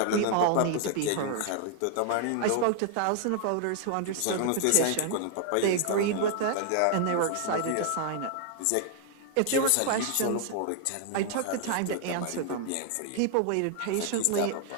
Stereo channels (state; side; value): different; both; correlation 0.00